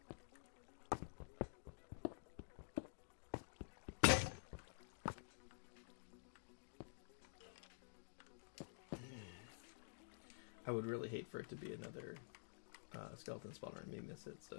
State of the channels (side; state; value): right; silent; digital silence